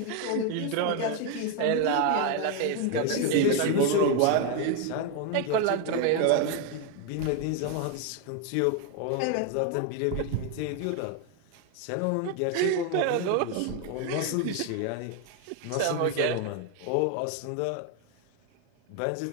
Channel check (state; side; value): different; both; correlation 0.01